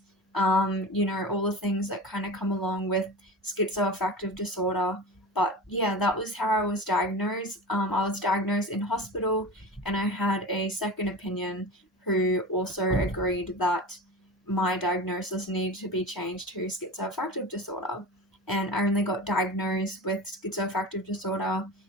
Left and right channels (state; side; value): normal; both; correlation 0.31